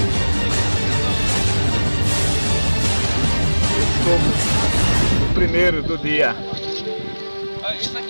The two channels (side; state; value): both; inverted; correlation -1.00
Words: O primeiro do dia. Olha isso